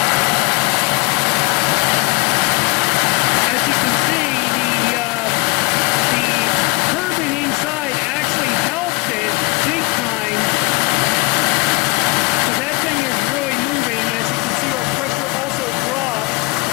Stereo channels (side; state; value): right; quieter; 27.2 dB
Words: As you can see, the turbine inside actually helped it big time, because that thing is really moving. As you can see, our pressure also dropped.